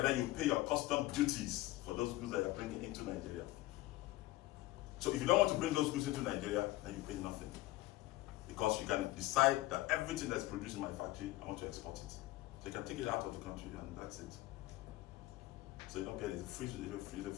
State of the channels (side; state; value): right; quieter; 17.9 dB